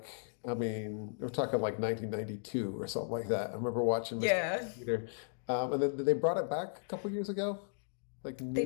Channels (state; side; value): silent; right; digital silence